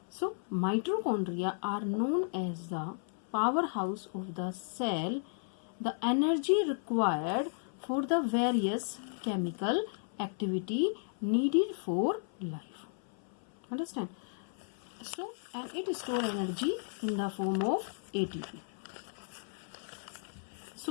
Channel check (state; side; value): silent; right; 55 dB below the other